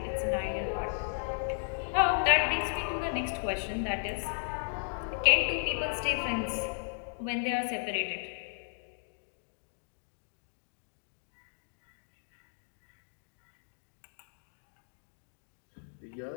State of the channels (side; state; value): right; silent; digital silence